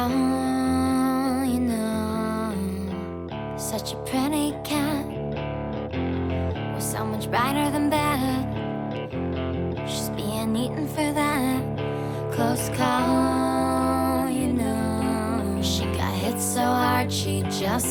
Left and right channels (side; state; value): both; identical; correlation 1.00